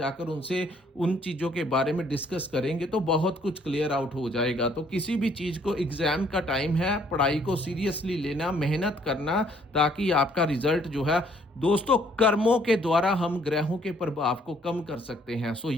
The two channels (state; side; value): normal; both; correlation 0.64